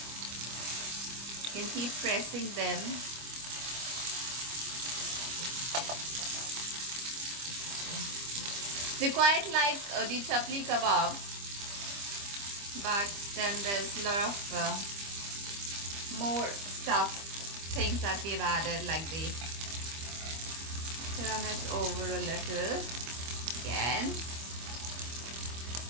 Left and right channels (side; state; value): left; late; 25 ms